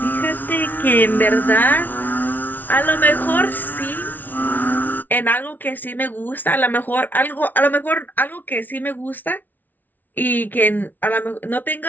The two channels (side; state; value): right; late; 0.084 ms